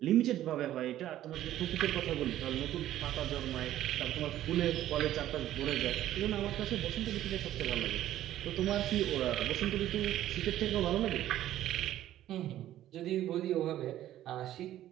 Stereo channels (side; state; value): left; quieter; 13.0 dB